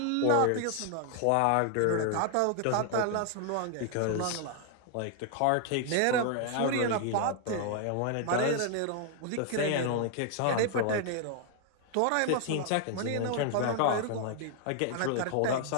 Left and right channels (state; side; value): different; both; correlation 0.00